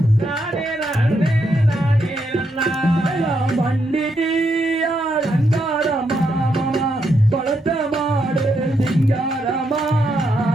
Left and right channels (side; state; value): both; normal; correlation 0.79